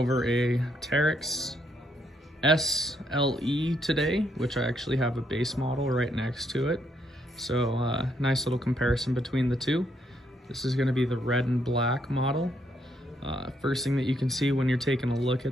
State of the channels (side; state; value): both; normal; correlation 0.74